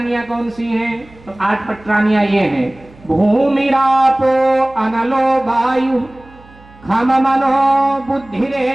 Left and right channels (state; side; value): noise; right; hum, 25 dB below the sound